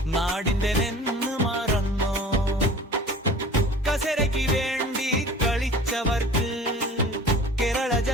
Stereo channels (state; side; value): normal; both; correlation 0.43